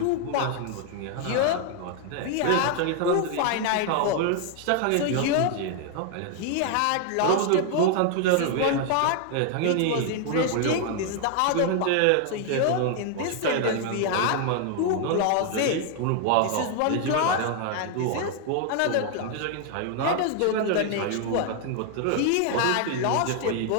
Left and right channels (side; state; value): both; different; correlation 0.00